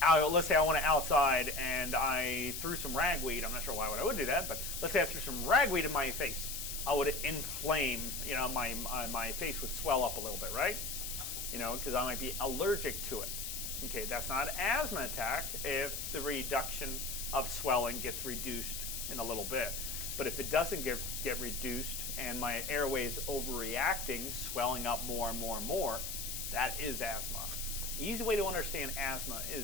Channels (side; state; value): left; noise; hiss, 5 dB below the sound